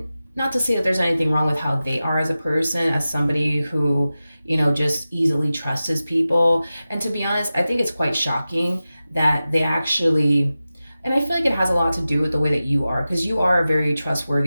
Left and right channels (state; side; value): inverted; both; correlation -0.95